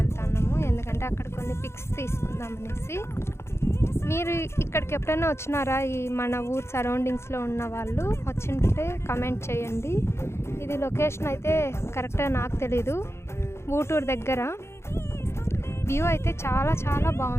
ఎందుకంటే అక్కడ కొన్ని పిక్స్ తీసుకుందామనేసి. మీరు ఇక్కడికి ఎప్పుడైనా వచ్చినారా? ఈ మన ఊరు సరౌండింగ్స్లో ఉన్న వాళ్ళు వచ్చింటే కమెంట్ చేయండి. ఇది లొకేషన్ అయితే కరెక్ట్గా నాకు తెలీదు. ఊటూరు దగ్గర వ్యూ అయితే చాలా చాలా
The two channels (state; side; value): late; right; 0.13 ms